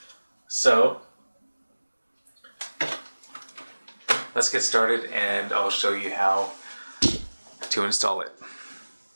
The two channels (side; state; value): both; inverted; correlation -1.00